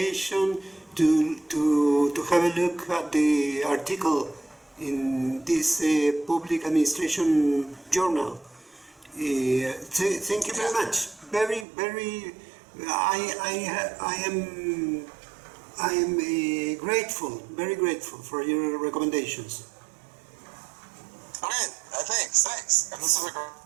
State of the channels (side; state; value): left; drops out; at 11.7 s